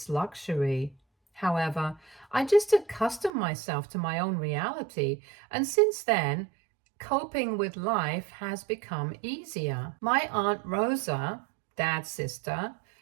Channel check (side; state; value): left; drops out; at 3.3 s